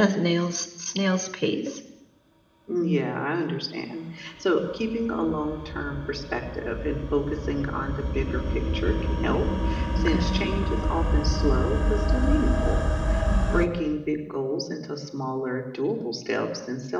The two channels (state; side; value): identical; both; correlation 1.00